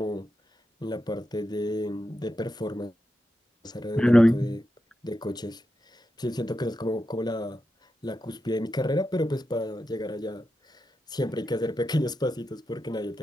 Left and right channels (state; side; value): normal; both; correlation 0.88